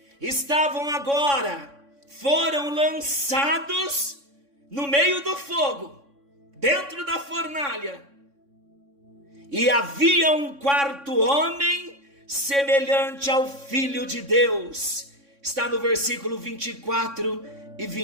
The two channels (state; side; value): late; left; 3.6 ms